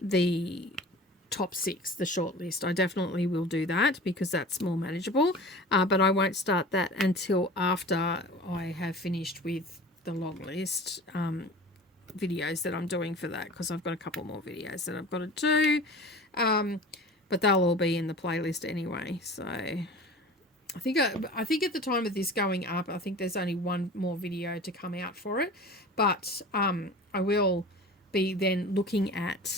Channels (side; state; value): both; normal; correlation 0.39